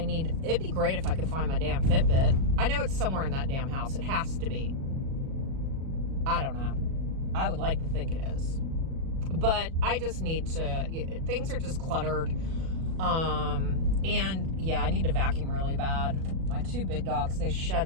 be great if I could find my damn Fitbit. I know it's somewhere in that damn house. It has to be. I don't know. I would like to think it is. But I just need to, things are just cluttered. And yeah, I need to vacuum really bad. My 2 big dogs, they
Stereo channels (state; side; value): late; left; 37 ms